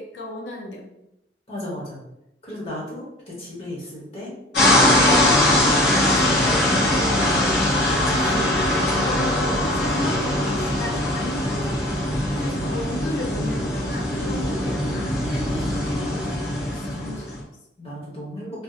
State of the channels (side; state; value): both; normal; correlation 0.44